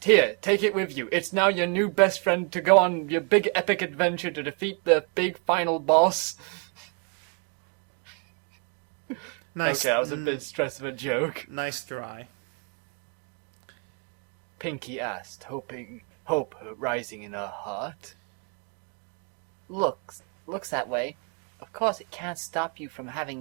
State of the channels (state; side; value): quieter; left; 37.6 dB